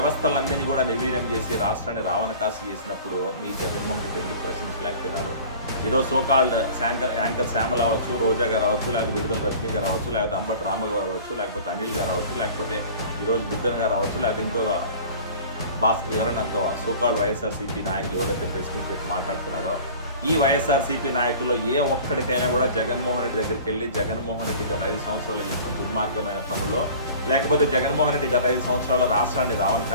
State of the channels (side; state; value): both; inverted; correlation -0.43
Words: కూడా నిర్వీర్యం చేసి రాష్ట్రాన్ని రావణ కాసు చేసినప్పుడు మీ జగన్మోహన్ రెడ్డి ఎందుకు ప్రశ్నించలేకపోయినారు? ఈరోజు సోకాల్డ్ యాంకర్ శ్యామల అవ్వచ్చు, రోజా గారు అవ్వచ్చు, లేకపోతే విడుదల రజనీ గారు అవ్వచ్చు, లేకపోతే అంబటి రామ గారు అవ్వచ్చు, లేకపోతే అనిల్ గారు అవ్వచ్చు, లేకపోతే ఈరోజు బుగ్గన్ గారు అవ్వచ్చు, లేకపోతే ఇంకొక ఎవరైనా సోకాల్డ్ వైఎస్ఆర్సీపీ నాయకులు ఎవరైతే ప్రెస్ మీట్ పెట్టి మాట్లాడుతున్నాడో, ఈ వైఎస్ఆర్సీపీ నాయకుల్లో ఏ ఒక్కడికైనా కూడా జగన్మోహన్ రెడ్డి దగ్గరికి వెళ్ళి జగన్మోహన్ రెడ్డి గత 5 సంవత్సరాలు చేసిన దుర్మార్గమైన పనుల్లో, లేకపోతే జగన్మోహన్ రెడ్డి గత 5 సంవత్సరాల్లో రాష్ట్రాన్ని రావణ